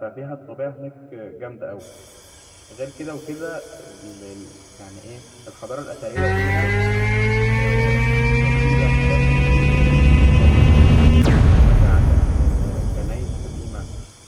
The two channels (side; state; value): both; identical; correlation 1.00